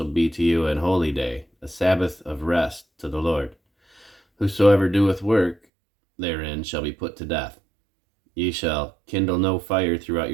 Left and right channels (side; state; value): left; drops out; at 5.6 s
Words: be to you an holy day, a Sabbath of rest to the Lord. Whosoever doeth work therein shall be put to death. Ye shall kindle no fire throughout